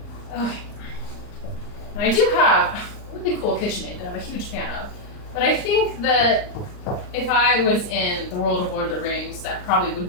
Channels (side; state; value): right; late; 39 ms